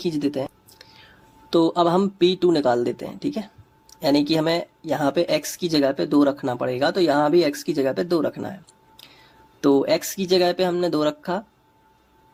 देते हैं, तो अब हम P2 निकाल देते हैं, ठीक है। यानी कि हमें यहाँ पे x की जगह पे 2 रखना पड़ेगा, तो यहाँ भी x की जगह पे 2 रखना है, तो x की जगह पे हमने 2 रखा,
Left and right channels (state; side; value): identical; both; correlation 1.00